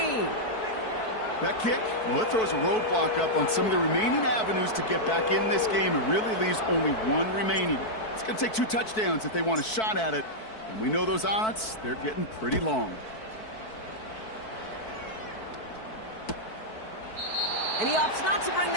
That kick, well, it throws a roadblock up on some of the remaining avenues to get back in this game. It really leaves only one remaining. It's going to take 2 touchdowns if they want a shot at it. And we know those odds, they're getting pretty long. And he opts not to bring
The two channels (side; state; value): right; late; 4.6 ms